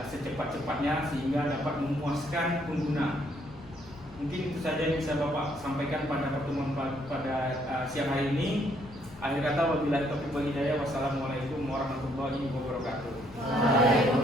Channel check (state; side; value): noise; left; rumble, 22 dB below the sound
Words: secepat-cepatnya sehingga dapat memuaskan pengguna. Mungkin itu saja yang bisa Bapak sampaikan pada pertemuan pada siang hari ini. Akhir kata, wabillahi taufiq wal hidayah. Wassalamualaikum warahmatullahi wabarakatuh.